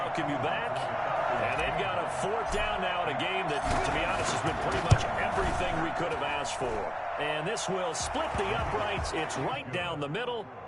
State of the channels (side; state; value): both; identical; correlation 1.00